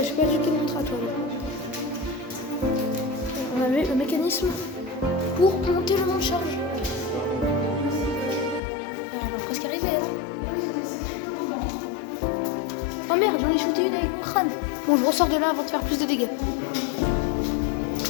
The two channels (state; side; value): drops out; right; at 8.6 s